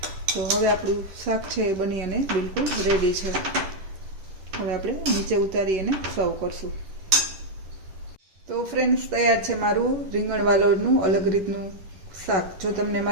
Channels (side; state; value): left; late; 10 ms